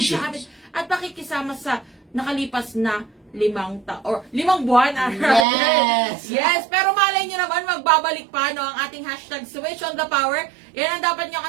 sa amin at pakikisama sa nakalipas na 5 buwan. Yes. Yes, pero malay nyo naman, magbabalik pa ang ating hashtag Switch on the Power. Yan ang dapat nyo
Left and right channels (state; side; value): drops out; left; at 5.5 s